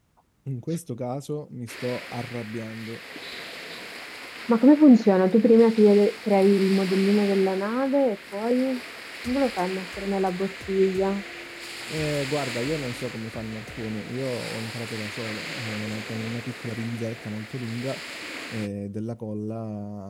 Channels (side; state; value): both; identical; correlation 1.00